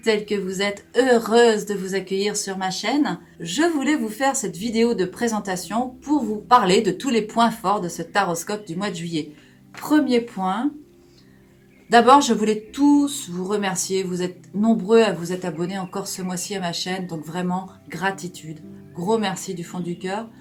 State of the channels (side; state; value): both; identical; correlation 1.00